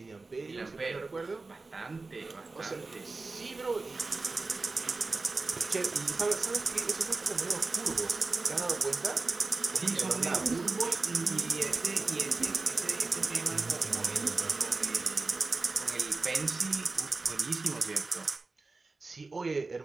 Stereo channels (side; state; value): left; quieter; 3.7 dB